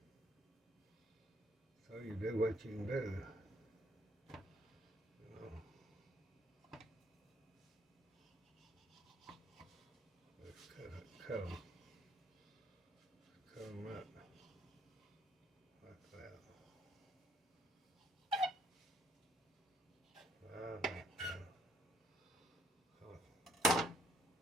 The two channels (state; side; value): normal; both; correlation 0.68